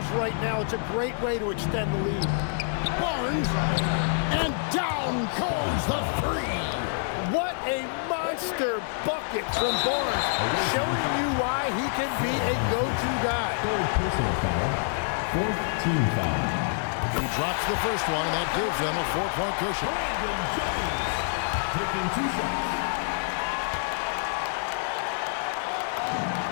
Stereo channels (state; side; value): silent; right; digital silence